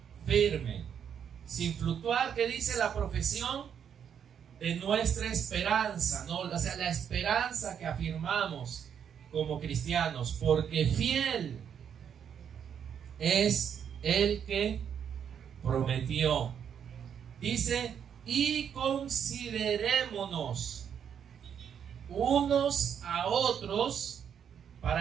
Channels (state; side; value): quieter; left; 8.2 dB